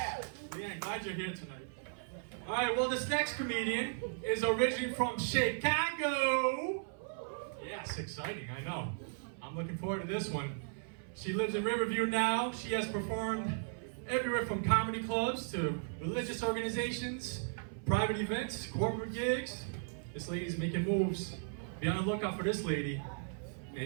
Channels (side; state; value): left; silent; 54 dB below the other